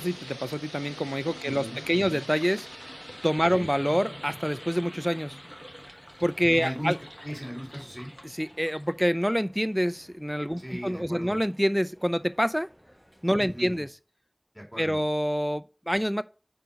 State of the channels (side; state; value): both; identical; correlation 1.00